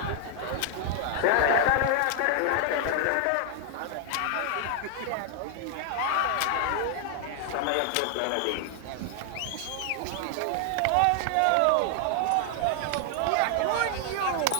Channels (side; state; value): both; different; correlation 0.00